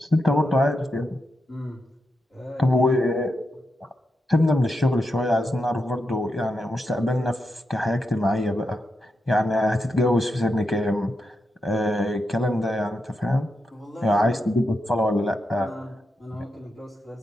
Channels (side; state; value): both; normal; correlation 0.86